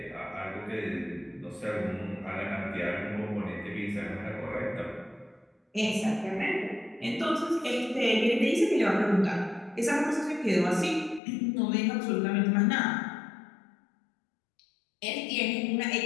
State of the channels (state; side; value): drops out; right; at 11.2 s